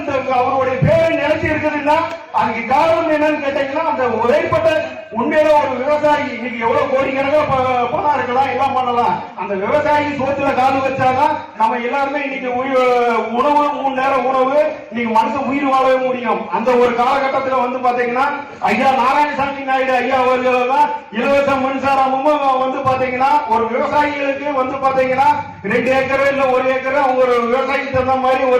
அவருடைய பேரை நிலைச்சி இருக்குதுன்னா அதுக்கு காரணம் என்னன்னு கேட்டீங்கன்னா அந்த உழைப்பட்ட உண்மையில ஒரு விவசாயி இன்னைக்கு எவ்வளவு கோடிக்கணக்காக பணம் இருக்கலாம், எல்லாம் பண்ணலாம். அந்த விவசாயி சோத்துல காலு வச்சாதான் நம்ம எல்லாருமே இன்னைக்கு உணவு 3 நேரம் உணவு இன்னைக்கு மனுஷன் உயிர் வாழவே முடியும். அந்த ஒரு காலகட்டத்தில் பாத்தீங்கன்னா ஐயா நாராயணசாமி நாயுடு ஐயா அவர்கள் தான் இலவச மின்சாரமும் பாத்தீங்கன்னா ஒரு விவசாயிகளுக்கு பாத்தீங்கன்னா 2 ஏக்கர் இல்ல 1 ஏக்கர் அவங்க ஒரு விவசாயிக்கு தகுந்த மாதிரி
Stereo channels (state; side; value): identical; both; correlation 1.00